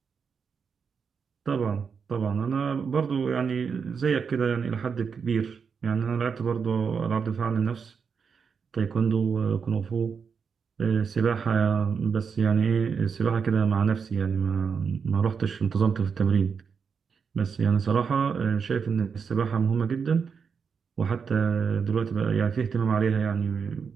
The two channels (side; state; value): left; quieter; 6.1 dB